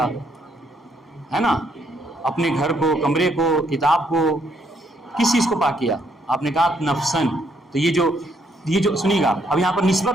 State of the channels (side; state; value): both; normal; correlation 0.71